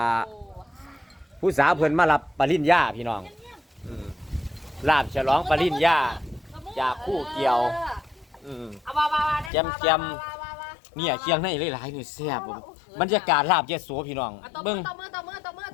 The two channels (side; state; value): right; drops out; at 9.5 s